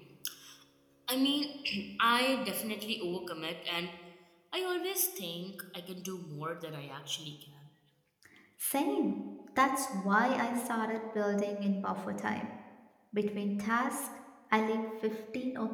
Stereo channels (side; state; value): both; identical; correlation 1.00